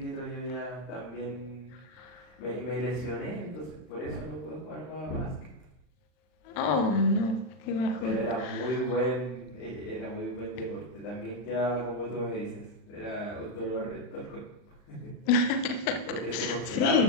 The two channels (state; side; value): late; right; 39 ms